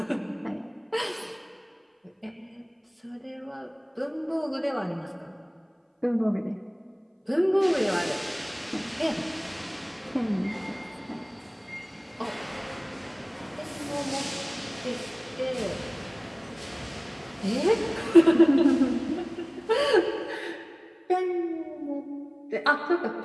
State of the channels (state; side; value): identical; both; correlation 1.00